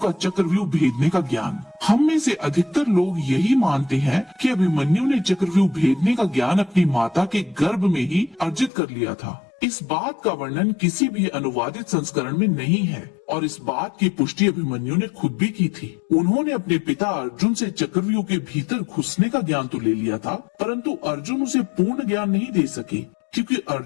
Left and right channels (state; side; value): drops out; right; at 8.7 s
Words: का चक्रव्यूह भेदने का ज्ञान। हम में से अधिकतर लोग यही मानते हैं कि अभिमन्यु ने चक्रव्यूह भेदने का ज्ञान अपनी माता के गर्भ में ही अर्जित कर लिया था। इस बात का वर्णन किसी भी अनुवादित संस्करण में नहीं है और इस बात की पुष्टि अभिमन्यु ने खुद भी की थी। उन्होंने अपने पिता अर्जुन से चक्रव्यूह के भीतर घुसने का ज्ञान तो ले लिया था, परंतु अर्जुन उसे पूर्ण ज्ञान नहीं दे सके क्योंकि